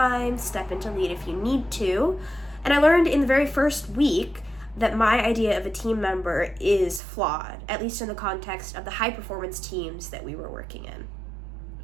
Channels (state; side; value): drops out; left; at 7.0 s